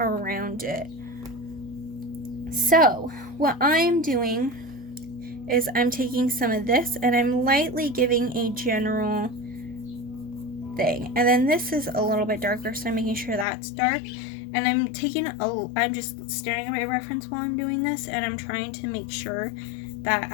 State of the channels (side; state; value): right; drops out; at 13.5 s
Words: it. So, what I'm doing is I'm taking some of this and I'm lightly giving a general thing. And then this is a little bit darker, so I'm making sure that's dark. And I'm just staring at my reference while I'm doing this, and I'm trying to make sure that